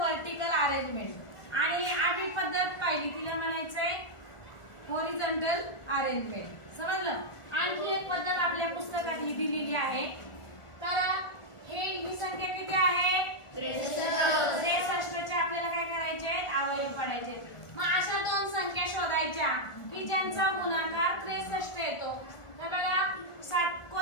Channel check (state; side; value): late; right; 1.4 ms